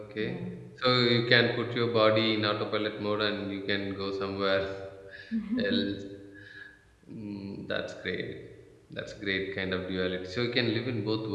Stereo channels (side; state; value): both; identical; correlation 1.00